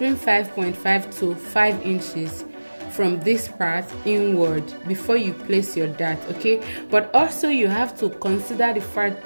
5.5 to 5 inches from this part inward before you place your dart, okay? But also you have to consider the fact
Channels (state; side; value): inverted; both; correlation -1.00